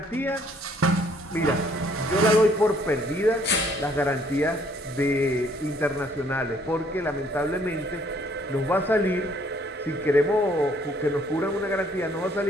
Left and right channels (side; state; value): both; normal; correlation 0.63